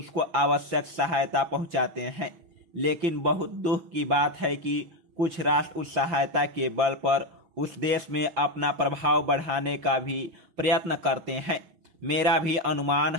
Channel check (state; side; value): late; left; 6.2 ms